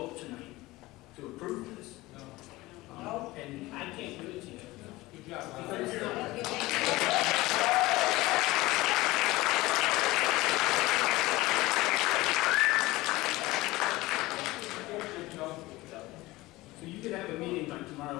tonight to approve this. And I can't give it to you. Good job. So you could have a meeting by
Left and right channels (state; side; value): quieter; right; 19.6 dB